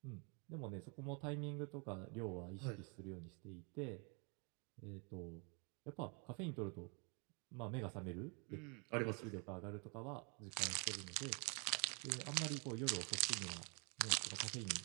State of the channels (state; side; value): quieter; left; 36.0 dB